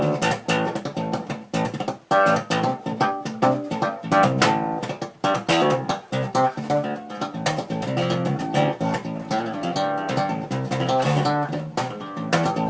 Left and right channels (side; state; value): both; identical; correlation 1.00